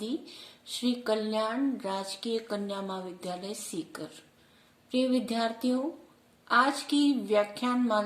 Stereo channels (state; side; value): identical; both; correlation 1.00